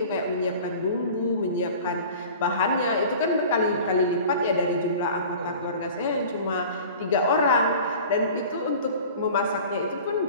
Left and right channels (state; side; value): inverted; both; correlation -0.41